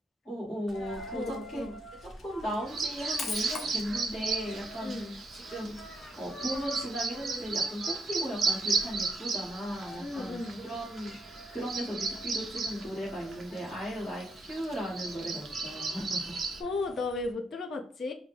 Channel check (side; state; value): both; normal; correlation 0.76